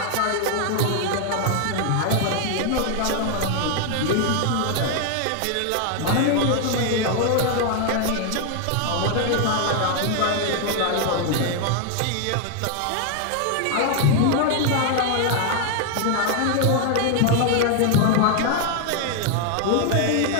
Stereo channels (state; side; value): different; both; correlation 0.00